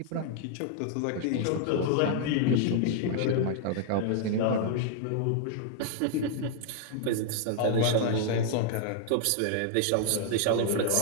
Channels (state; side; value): different; both; correlation -0.01